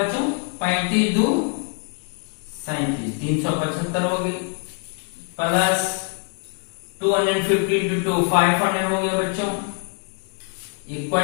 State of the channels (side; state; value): right; quieter; 39.9 dB